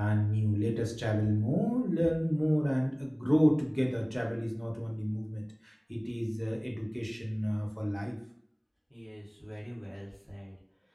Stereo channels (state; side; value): identical; both; correlation 1.00